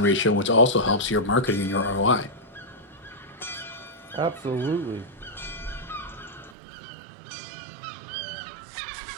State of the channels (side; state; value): left; drops out; at 6.6 s